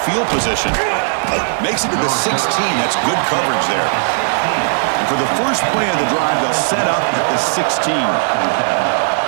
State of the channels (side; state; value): left; silent; digital silence